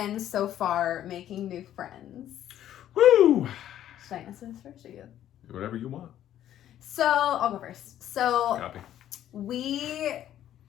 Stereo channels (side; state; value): right; quieter; 11.6 dB